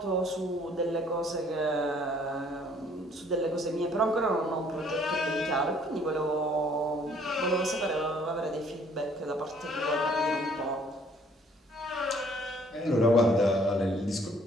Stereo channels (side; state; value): both; normal; correlation 0.60